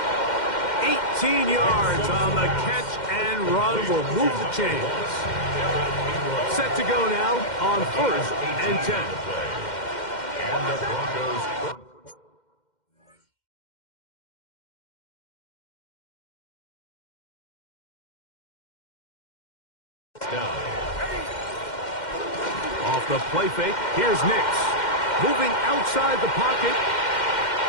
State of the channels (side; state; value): right; late; 2.1 ms